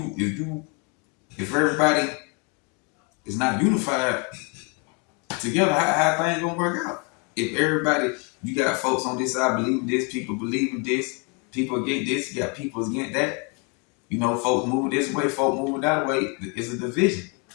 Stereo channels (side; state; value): right; quieter; 33.8 dB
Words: if everybody is not unified together, how things gonna work out? If everybody, you got folks on this side believing this, people believing this, people against this, you got people against that. You know, folks move this way, folks move that way. It's a division.